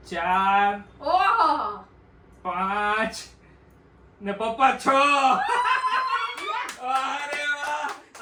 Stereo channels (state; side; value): identical; both; correlation 1.00